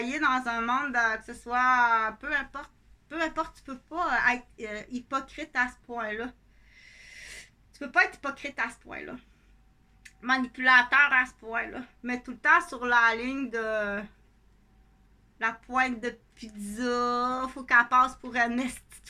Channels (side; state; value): both; identical; correlation 1.00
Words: dans un monde, que ce soit, peu importe, tu peux pas être hypocrite à ce point-là. Tu peux pas être hypocrite à ce point-là. Manipulateur à ce point-là. Mais tout le temps sur la ligne de la pointe de pizza, faut qu'elle passe pour une petite